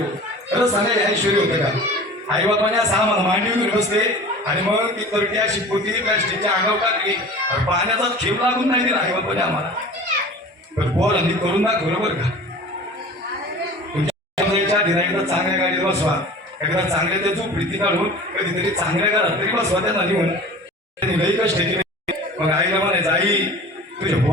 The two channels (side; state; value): both; normal; correlation 0.40